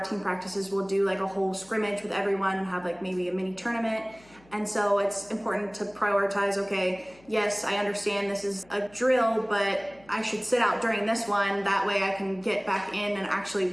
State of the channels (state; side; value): noise; left; hum, 27 dB below the sound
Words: practices, we'll do like a whole scrimmage with everyone and have like maybe a mini tournament. And so it's important to prioritize, okay, yes, I understand this is a drill, but I should sit out during this one. That way I can get back in and